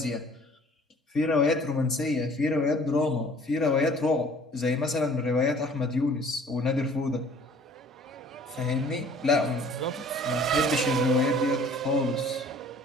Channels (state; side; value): normal; both; correlation 0.52